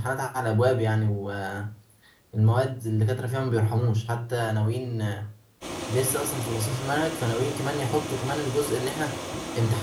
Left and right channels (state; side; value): identical; both; correlation 1.00